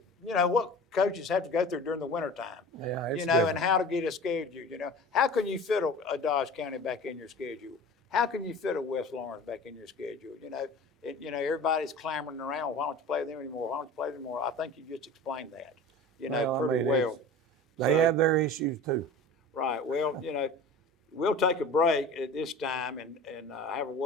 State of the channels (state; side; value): normal; both; correlation 0.38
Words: what coaches have to go through during the wintertime. Yeah, it's and how to get a schedule. How can you fit a Dodge County back in your schedule? How can you fit a West Lawrence back in your schedule? Everybody's clamoring around. Why don't you play them anymore? Why don't you play them anymore? I think you just explained that. Pretty well. They have their issues too. Right. Well, we'll take a break at this time and have a